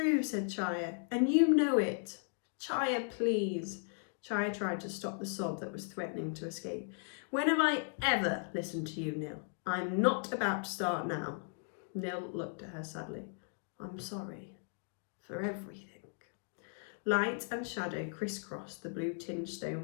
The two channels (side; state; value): right; silent; 53 dB below the other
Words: said Chaya, and you know it. Chaya, please. Chaya tried to stop the sob that was threatening to escape. When have I ever listened to you, Nil? I'm not about to start now. Nil looked at her sadly. I'm sorry for everything. Light and shadow crisscrossed the blue-tinged